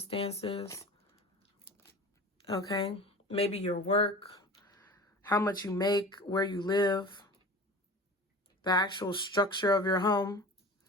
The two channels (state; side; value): normal; both; correlation 0.37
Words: Okay? Maybe your work, how much you make, where you live, the actual structure of your home.